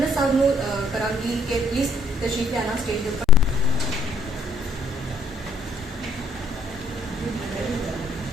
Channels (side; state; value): both; normal; correlation 0.66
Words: صاحب نو کرانگی کہ پلیز تشریف لے آنا اسٹیج کے اوپر.